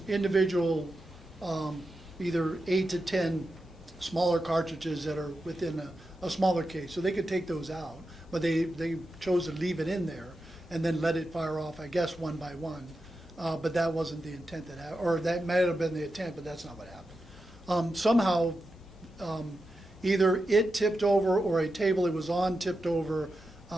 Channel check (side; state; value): both; normal; correlation 0.89